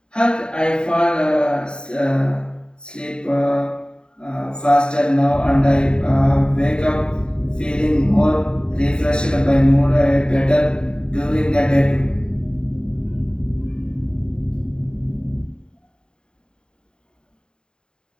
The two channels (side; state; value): right; late; 0.049 ms